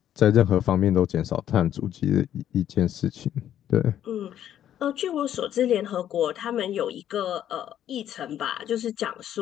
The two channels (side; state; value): right; quieter; 10.8 dB